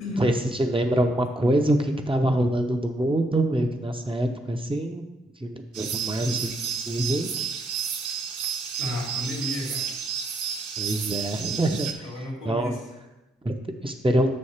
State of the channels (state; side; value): normal; both; correlation 0.76